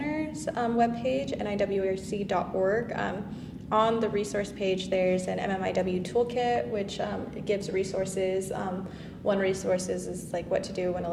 webpage, MMIWRC.org. On the resource page, there's an MMIW toolkit, which gives resources. One resource is what to do when a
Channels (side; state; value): both; identical; correlation 1.00